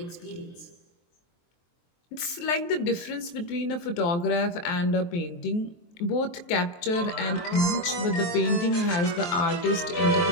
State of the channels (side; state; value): right; late; 23 ms